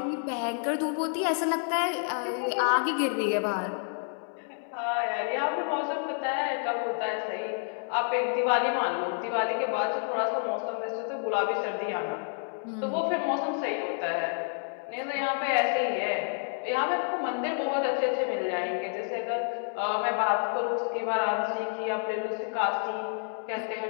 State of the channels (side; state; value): right; silent; 58 dB below the other